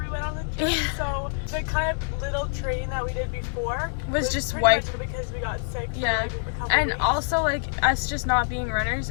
we went on the trip, so the kind of little training that we did before was just pretty wiped. much because we got sick for Yeah. like a couple And weeks. also like us just not being runners,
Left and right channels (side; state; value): right; silent; 61 dB below the other